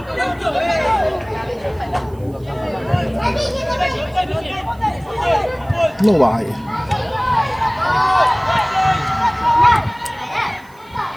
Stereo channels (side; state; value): right; noise; hiss, 29 dB below the sound